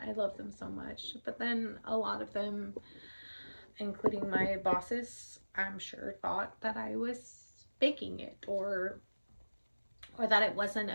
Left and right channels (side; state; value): both; inverted; correlation -1.00